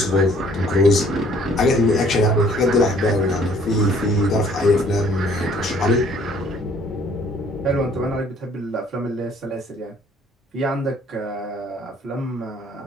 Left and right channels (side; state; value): both; normal; correlation 0.59